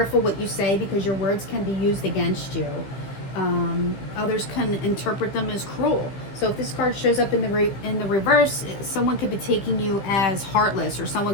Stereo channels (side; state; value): right; late; 15 ms